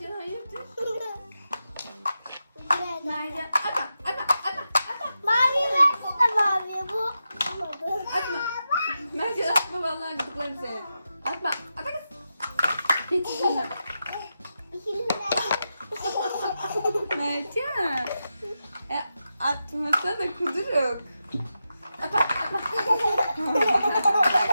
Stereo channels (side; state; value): both; inverted; correlation -0.89